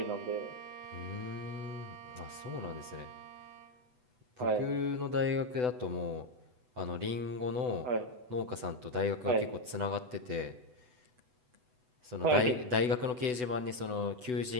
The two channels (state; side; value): late; left; 8.0 ms